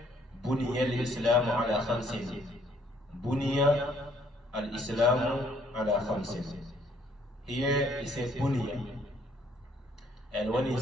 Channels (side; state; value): both; normal; correlation 0.65